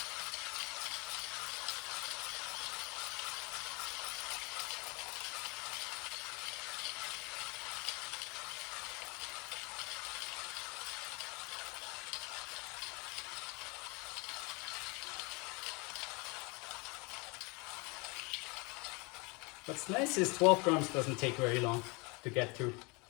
What's nice is 12 grams doesn't take very long to get through.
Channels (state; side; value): quieter; right; 28.3 dB